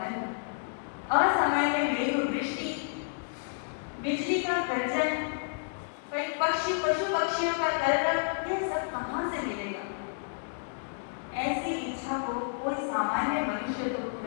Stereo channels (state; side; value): silent; right; digital silence